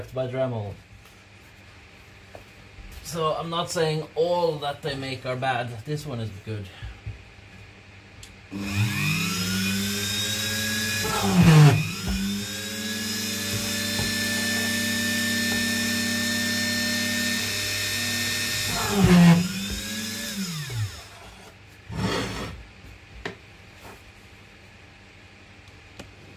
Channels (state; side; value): identical; both; correlation 1.00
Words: by Dremel. So I'm not saying all that they make are bad. This one is good.